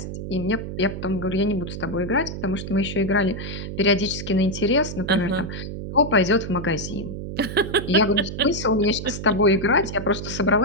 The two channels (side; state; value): right; noise; hum, 7 dB below the sound